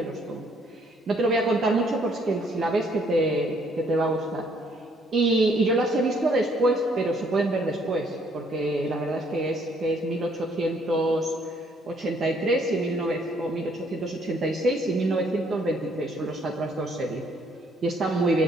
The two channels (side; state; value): both; normal; correlation 0.66